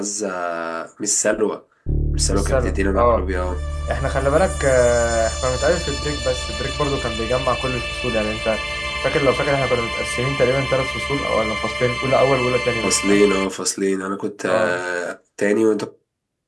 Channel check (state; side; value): identical; both; correlation 1.00